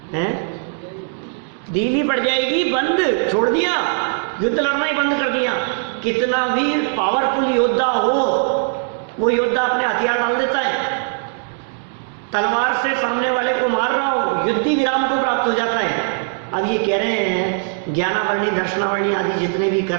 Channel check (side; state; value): left; silent; digital silence